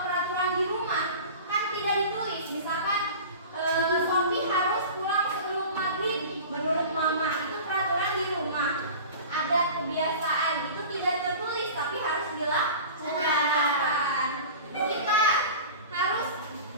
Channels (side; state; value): both; inverted; correlation -0.37